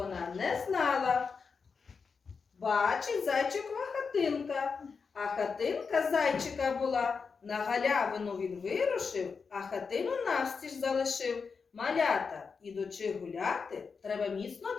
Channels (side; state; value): right; quieter; 5.3 dB